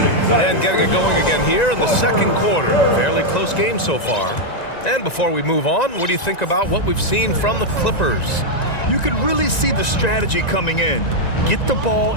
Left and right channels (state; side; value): late; right; 1.9 ms